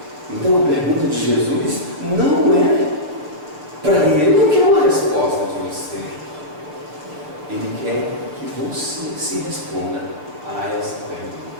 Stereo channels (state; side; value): late; left; 6.6 ms